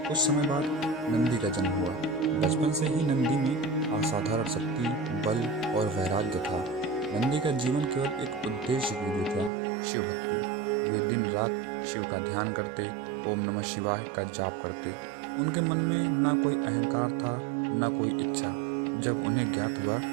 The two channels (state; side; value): drops out; left; at 9.5 s